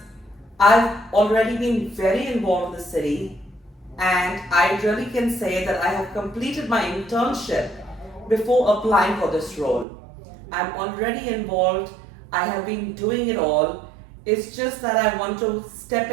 I've already been very involved in the city, and I really can say that I have completed my internship before applying for this role. I'm already involved, I have been doing it all. It's just that I want to step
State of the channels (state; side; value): drops out; left; at 9.9 s